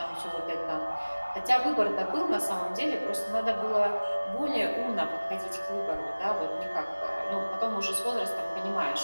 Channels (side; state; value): both; inverted; correlation -1.00